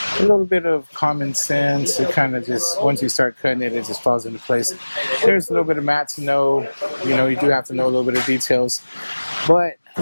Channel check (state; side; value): inverted; both; correlation -1.00